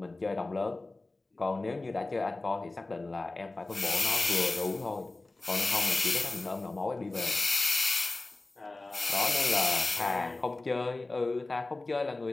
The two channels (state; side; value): quieter; right; 3.1 dB